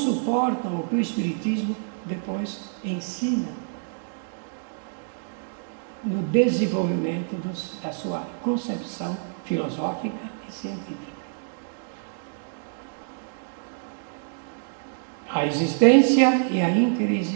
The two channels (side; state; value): left; silent; digital silence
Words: o que o Espiritismo depois ensina no desenvolvimento da sua concepção filosófica e científica? A existência e a